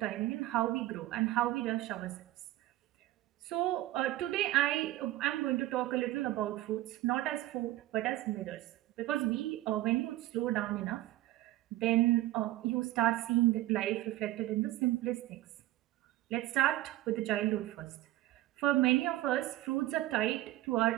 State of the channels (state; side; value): quieter; left; 15.9 dB